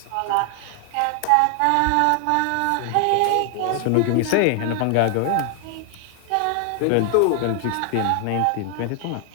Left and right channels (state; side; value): different; both; correlation 0.00